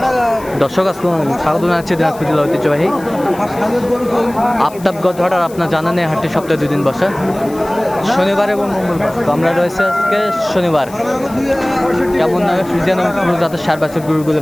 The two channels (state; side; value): noise; left; hiss, 21 dB below the sound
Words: আসসালামু আলাইকুম, স্বাগত জানাচ্ছি দিনাজপুর জেলা ঐতিহ্যবাহী আফতাবগঞ্জ হাট। আর আপনার জানা নেই হাটটি সপ্তাহে 2 দিন বসে, শনিবার এবং মঙ্গলবার। তো আমরা রয়েছে আজকে শনিবার। কেমন নয় ফ্রিজিয়ান এবং পুরো জাতের সার বাছুর গরুগুলো